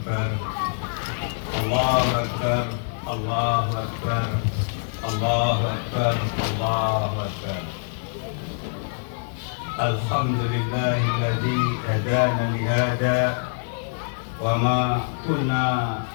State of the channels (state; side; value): silent; right; digital silence